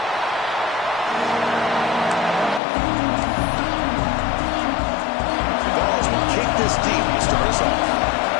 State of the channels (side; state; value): right; drops out; at 2.6 s